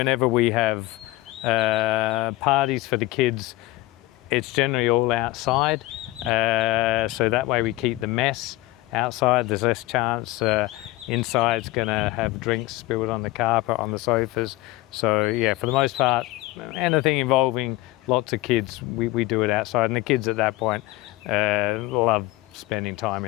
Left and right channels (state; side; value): quieter; right; 18.7 dB